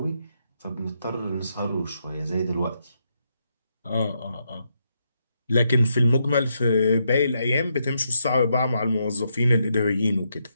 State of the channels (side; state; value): both; inverted; correlation -0.80